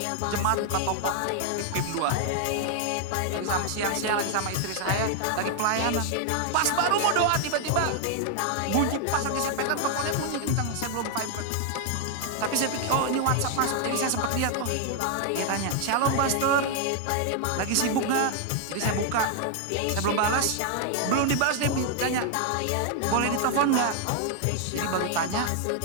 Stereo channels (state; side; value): different; both; correlation 0.00